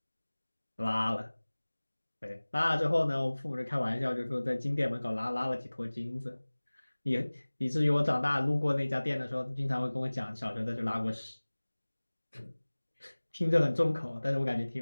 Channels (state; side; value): inverted; both; correlation -1.00